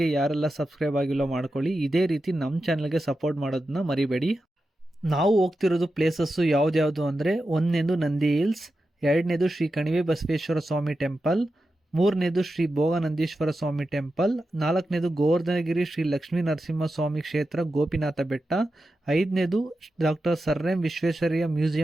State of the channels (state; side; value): normal; both; correlation 0.91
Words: ಯಾರೆಲ್ಲ ಸಬ್ಸ್ಕ್ರೈಬ್ ಆಗಿಲ್ಲ ಮಾಡ್ಕೊಳ್ಳಿ. ಇದೇ ರೀತಿ ನಮ್ಮ ಚಾನೆಲ್ಗೆ ಸಪೋರ್ಟ್ ಮಾಡೋದನ್ನ ಮರಿಬೇಡಿ. ನಾವು ಹೋಗ್ತಿರೋದು ಪ್ಲೇಸಸ್ಸು ಯಾವ್ದ್ಯಾವುದು ಅಂದರೆ, ಒಂದನೇದು ನಂದಿ ಹಿಲ್ಸ್, ಎರಡನೇದು ಶ್ರೀ ಕಣಿವೆ ಬಸವೇಶ್ವರ ಸ್ವಾಮಿ ಟೆಂಪಲ್, ಮೂರನೇದು ಶ್ರೀ ಭೋಗನಂದೀಶ್ವರ ಸ್ವಾಮಿ ಟೆಂಪಲ್, ನಾಲ್ಕನೇದು ಗೋವರ್ಧನಗಿರಿ ಶ್ರೀ ಲಕ್ಷ್ಮೀ ನರಸಿಂಹ ಸ್ವಾಮಿ ಕ್ಷೇತ್ರ ಗೋಪಿನಾಥ ಬೆಟ್ಟ, ಐದನೇದು doctor sir M Visvesvaraya